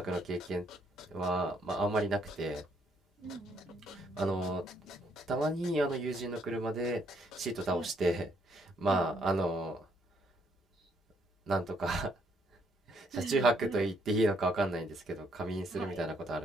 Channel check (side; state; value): both; normal; correlation 0.70